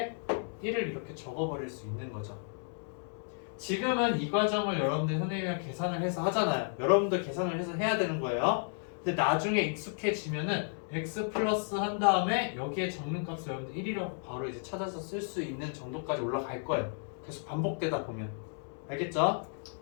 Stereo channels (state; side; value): silent; right; 56 dB below the other